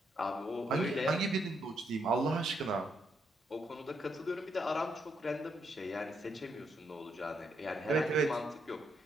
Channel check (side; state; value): both; normal; correlation 0.77